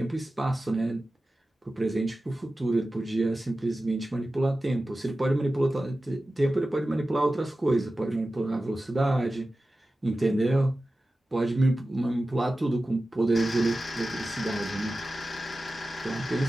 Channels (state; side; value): normal; both; correlation 0.95